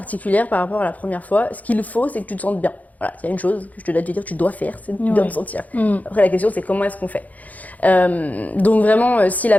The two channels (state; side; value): late; right; 0.077 ms